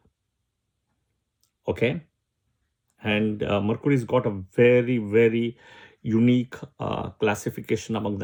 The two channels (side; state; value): both; identical; correlation 1.00